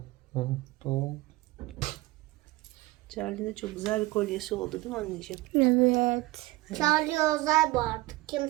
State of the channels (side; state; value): left; quieter; 20.0 dB